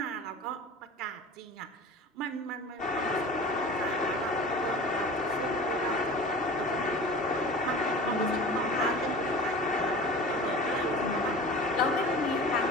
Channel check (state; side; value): normal; both; correlation 0.38